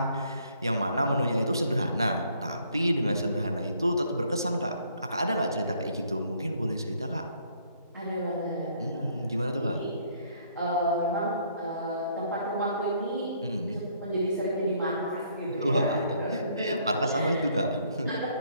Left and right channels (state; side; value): inverted; both; correlation -0.65